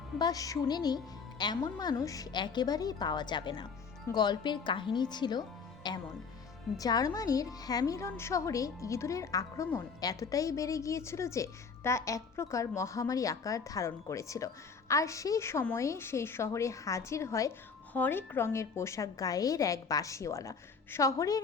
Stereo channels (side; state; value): right; quieter; 5.4 dB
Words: বা শুনেনি এমন মানুষ একেবারেই পাওয়া যাবে না। গল্পের কাহিনী ছিল এমন: জার্মানির হ্যামিলন শহরে ইঁদুরের আক্রমণ এতটাই বেড়ে গিয়েছিল যে তা এক প্রকার মহামারী আকার ধারণ করেছিল। আর সেই সময়ে সেই শহরে হাজির হয় হরেক রঙের পোশাক গায়ের এক বাঁশিওয়ালা। শহরের